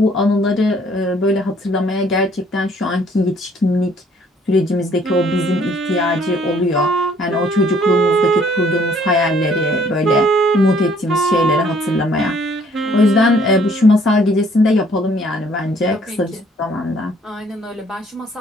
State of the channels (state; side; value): normal; both; correlation 0.61